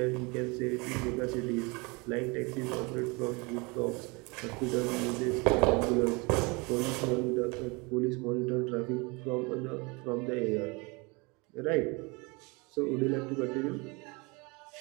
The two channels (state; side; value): quieter; left; 27.9 dB